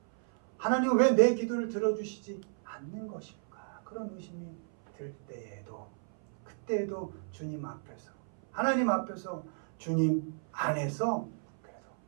하나님 왜 내 기도를 들어주시지 않는 것일까? 그런 의심이 들 때에도, 그때에도 주님 앞에서, 하나님 앞에서, 주님 안에서 그래도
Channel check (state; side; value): silent; left; 56 dB below the other